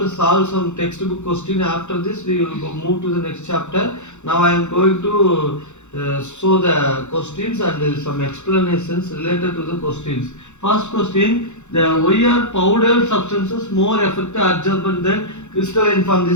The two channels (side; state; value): right; late; 0.83 ms